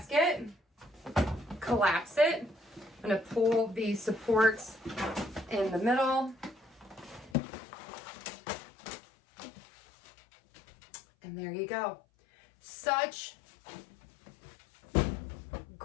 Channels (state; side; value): drops out; right; at 7.4 s